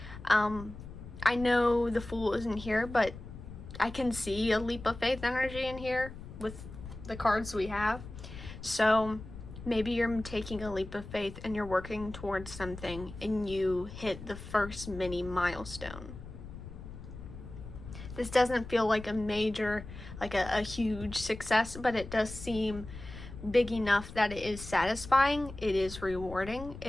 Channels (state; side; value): noise; left; rumble, 13 dB below the sound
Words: I know the Fool isn't here, but I can see a leap of faith energy in here with the cards we have. So maybe you're taking a leap of faith and you're working towards something and you hit the first mini milestone. This doesn't feel like a major, like a huge success, but it does seem big enough that it is satisfying, it is rewarding,